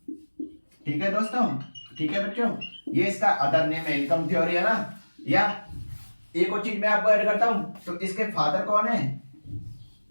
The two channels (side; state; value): both; inverted; correlation -1.00